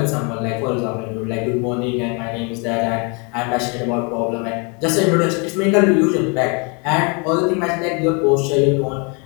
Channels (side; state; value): right; quieter; 33.4 dB